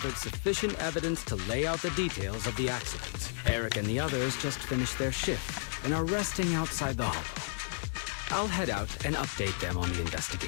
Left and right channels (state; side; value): silent; right; digital silence